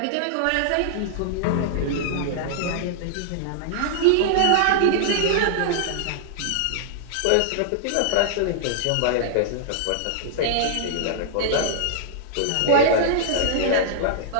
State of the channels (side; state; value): both; different; correlation -0.01